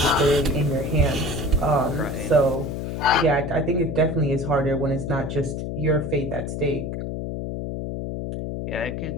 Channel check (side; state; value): left; noise; hum, 4 dB below the sound